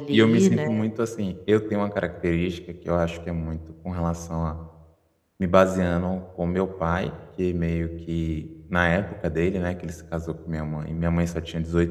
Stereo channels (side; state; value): both; identical; correlation 1.00